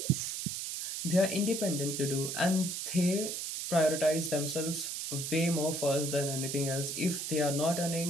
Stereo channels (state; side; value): noise; right; hiss, 4 dB below the sound